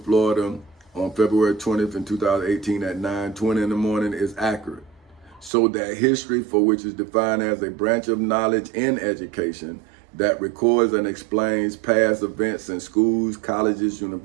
Florida on February 20th in 2018 at 9:20 in the morning is accurate. So that history, for which is defined as a branch of knowledge in education that records and explains past events in schools, colleges,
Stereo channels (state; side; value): drops out; left; at 5.5 s